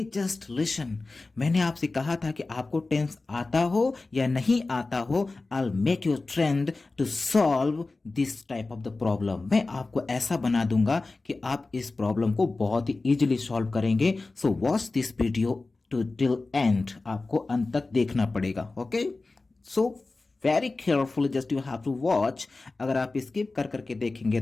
just listen. मैंने आपसे कहा था कि आपको टेंस आता हो या नहीं आता हो, I make you trained to solve this type of the problem. मैं आपको ऐसा बना दूंगा कि आप इस प्रॉब्लम को बहुत ही इजीली सॉल्व करेंगे। So watch this video to till end, आपको अंत तक देखना पड़ेगा। Okay, so very carefully just you have to watch. अगर आप स्किप कर करके देखेंगे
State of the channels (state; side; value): quieter; right; 3.5 dB